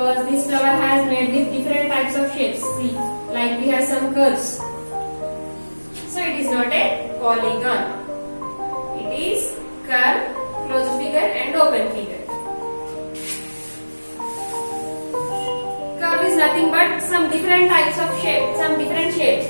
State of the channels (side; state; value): both; inverted; correlation -1.00